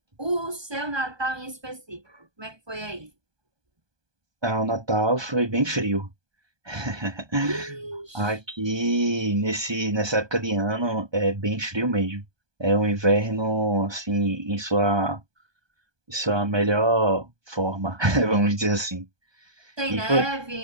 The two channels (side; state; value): left; late; 1.2 ms